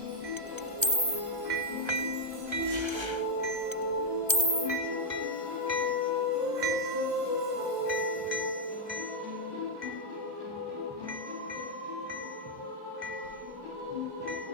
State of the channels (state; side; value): late; left; 1.3 ms